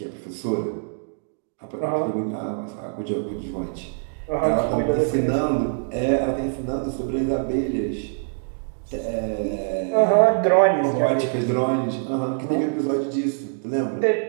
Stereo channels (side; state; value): left; silent; digital silence